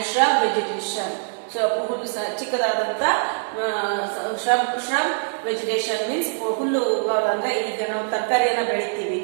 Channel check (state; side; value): silent; left; digital silence